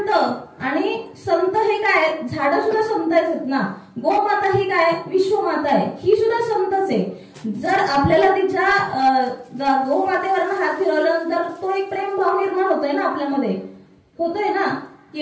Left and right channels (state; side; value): identical; both; correlation 1.00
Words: आणि संत हे काय, झाडं सुद्धा संत आहेत ना. गोमाता ही काय, विश्वमाता आहे, ही सुद्धा संतच आहे. जर आपल्याला तिच्या गोमातेवरनं हात फिरवल्यानंतर तो एक प्रेम भाव निर्माण होतोय ना आपल्यामध्ये, होतोय ना.